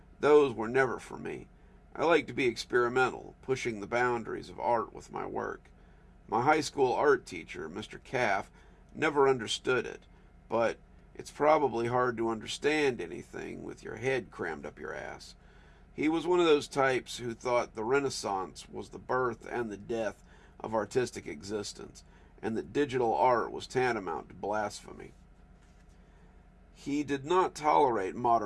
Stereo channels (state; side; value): identical; both; correlation 1.00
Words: those were never for me. I like to be experimental, pushing the boundaries of art with my work. My high school art teacher, Mr. Caff, never understood it, but it's probably hard to understand anything with your head crammed up your ass. He was one of those types who thought the Renaissance was the birth and the death of artistic existence, and that digital art was tantamount to blasphemy. He did not tolerate